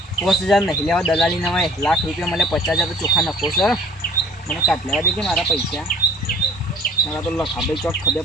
50,000 નહીં લેવા દલાલી ના હોય લાખ રૂપિયા મળે 50,000 તો ચોખા નફો સર મને કાઢ લેવા દેજે મારા પૈસા મારા તો લખાબે ચોક ખબર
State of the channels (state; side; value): normal; both; correlation 0.51